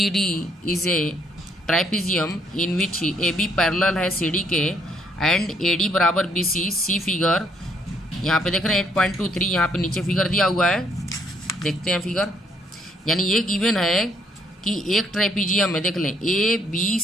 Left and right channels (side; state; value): both; normal; correlation 0.69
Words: is a ट्राइपीजियम in which AB parallel है CD के एंड AD बराबर BC। सी फिगर यहाँ पे देख रहे हैं 8.23, यहाँ पे नीचे फिगर दिया हुआ है, देखते हैं फिगर। यानी ये गिवन है कि एक ट्रेपीजियम है, देख लें